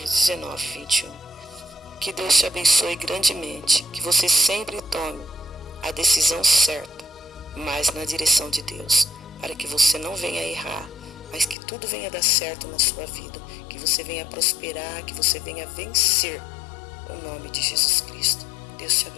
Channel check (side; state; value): right; drops out; at 11.6 s